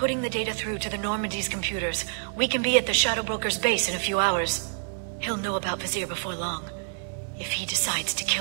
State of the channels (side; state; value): left; silent; 60 dB below the other